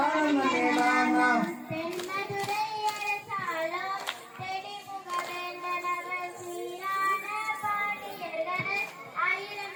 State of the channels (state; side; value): identical; both; correlation 1.00